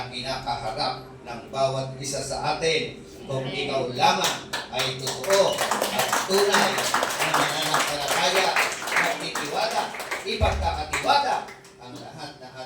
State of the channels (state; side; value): identical; both; correlation 1.00